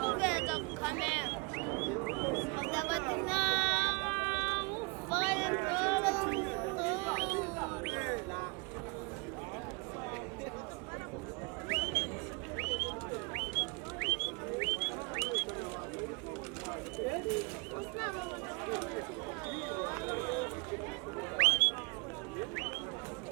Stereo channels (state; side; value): quieter; left; 32.1 dB